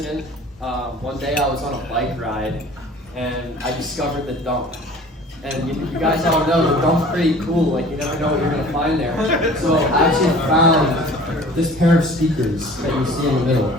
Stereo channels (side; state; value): both; normal; correlation 0.46